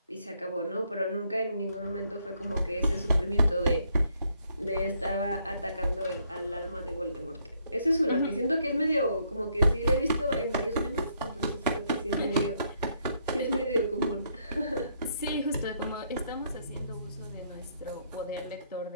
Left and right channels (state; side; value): inverted; both; correlation -0.72